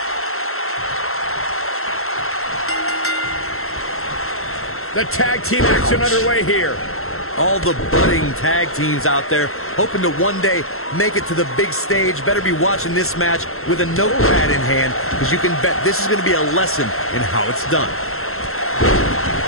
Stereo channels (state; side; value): late; right; 0.62 ms